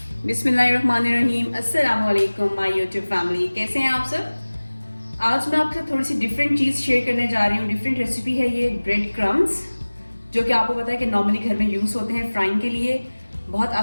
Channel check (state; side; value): inverted; both; correlation -1.00